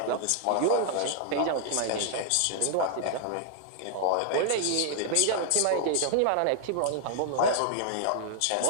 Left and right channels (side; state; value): both; different; correlation -0.01